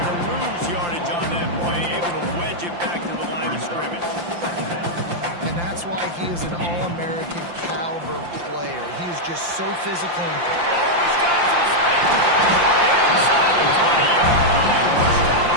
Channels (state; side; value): late; left; 5.8 ms